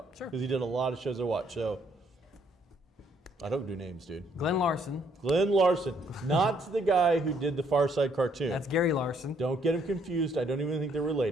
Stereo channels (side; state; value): both; normal; correlation 0.68